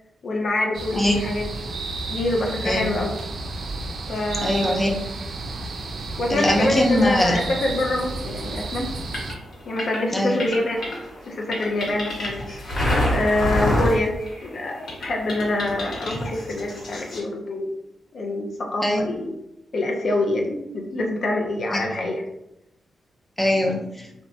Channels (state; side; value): normal; both; correlation 0.85